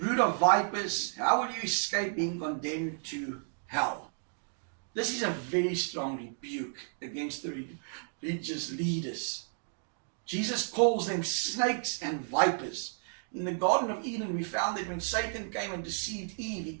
of vipers, how will you escape being condemned to hell? This is a very strong rebuke against the religious leaders. Jesus calls them snakes and vipers. In the Garden of Eden, we found that when Satan came and deceived Eve, he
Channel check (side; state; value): left; silent; digital silence